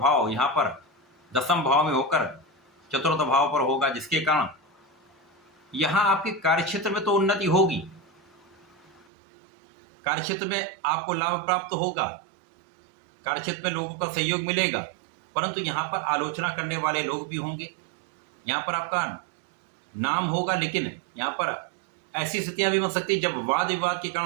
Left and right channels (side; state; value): left; drops out; at 9.1 s